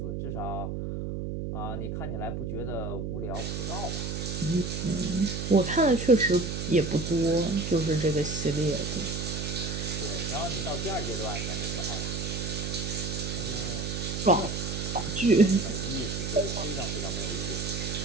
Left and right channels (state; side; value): noise; right; hum, 3 dB below the sound